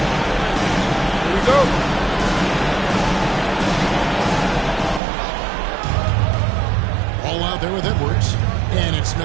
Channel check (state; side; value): drops out; left; at 5.0 s